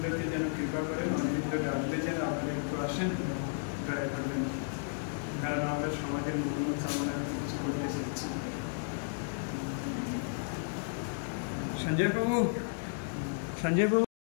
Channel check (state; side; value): silent; right; digital silence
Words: যেন কৃপা করেন, অনিন্দ্য ডাকলে যেন আপনারা একটু আসেন, দয়া করবেন, কারণ আমরা সমাজের মঙ্গল কামনা কিছু করতে চাইছি। সঞ্জয় বাবু, সঞ্জয় বাবু,